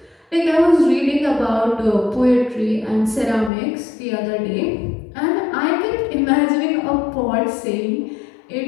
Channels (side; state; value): right; drops out; at 3.5 s